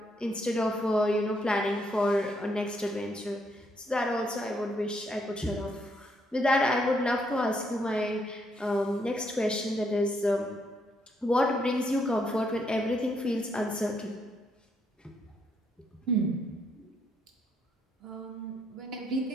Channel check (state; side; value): normal; both; correlation 0.74